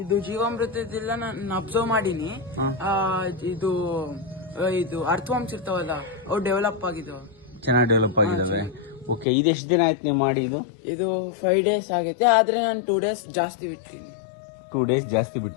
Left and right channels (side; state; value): right; drops out; at 9.2 s